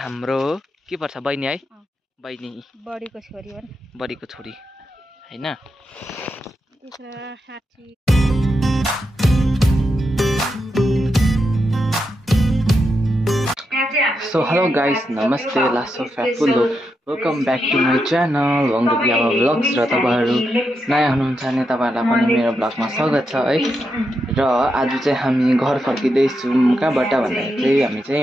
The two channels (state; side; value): normal; both; correlation 0.85